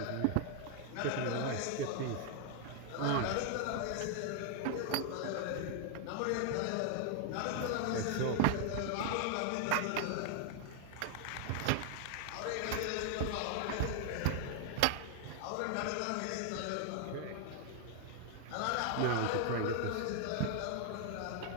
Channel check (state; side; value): different; both; correlation 0.00